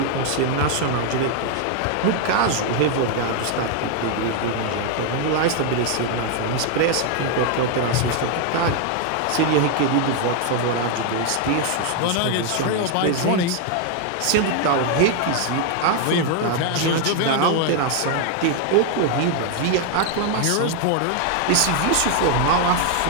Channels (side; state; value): both; different; correlation 0.00